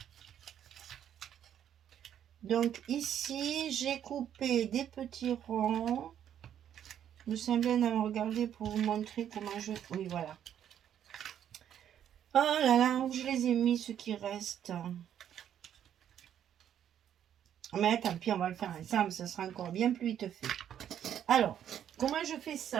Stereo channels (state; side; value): quieter; left; 9.9 dB